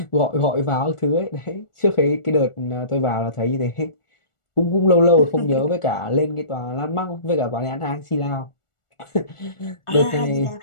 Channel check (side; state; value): right; late; 1.4 ms